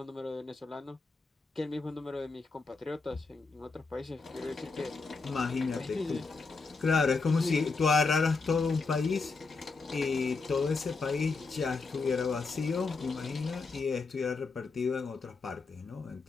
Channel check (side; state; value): right; quieter; 4.2 dB